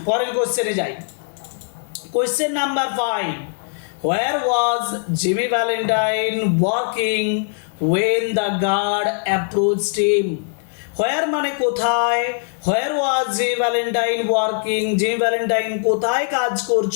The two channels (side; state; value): right; silent; 65 dB below the other